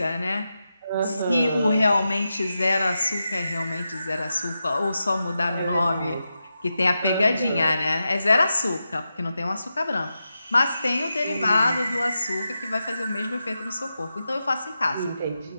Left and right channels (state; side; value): inverted; both; correlation -0.89